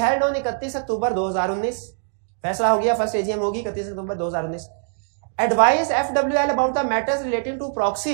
on 31 अक्टूबर 2019। फैसला हो गया, फर्स्ट AGM होगी 31 अक्टूबर 2019। Advise FWL about the matters relating to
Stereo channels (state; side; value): silent; left; digital silence